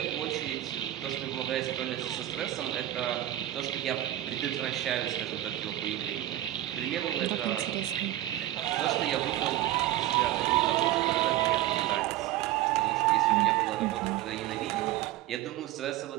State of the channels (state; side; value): quieter; left; 14.1 dB